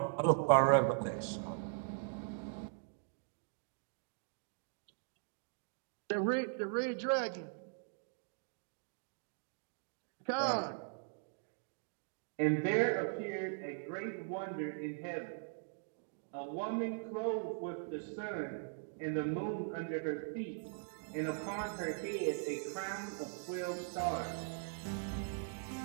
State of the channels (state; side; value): silent; left; digital silence